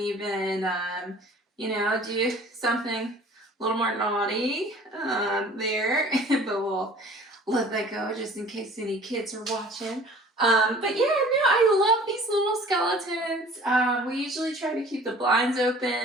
you know, do something a little more naughty there, but we'll let that go just in case any kids are watching. But yeah, no, I love these little skeletons. We usually try to keep the blinds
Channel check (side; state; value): both; normal; correlation 0.48